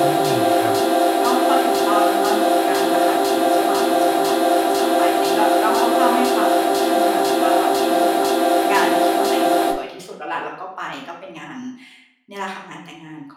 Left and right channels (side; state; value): both; identical; correlation 1.00